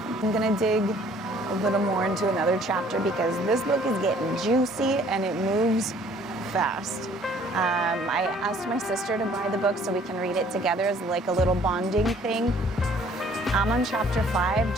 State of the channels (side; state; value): both; normal; correlation 0.57